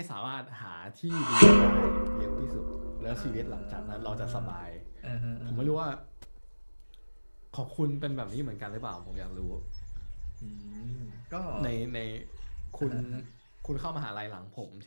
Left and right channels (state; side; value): inverted; both; correlation -1.00